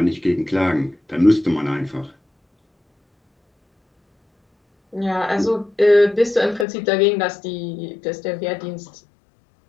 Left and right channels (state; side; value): drops out; right; at 6.7 s